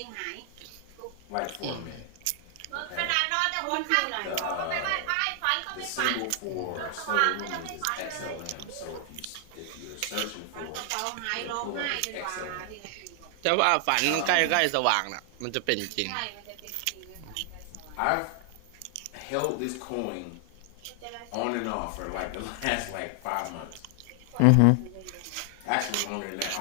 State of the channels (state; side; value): different; both; correlation 0.00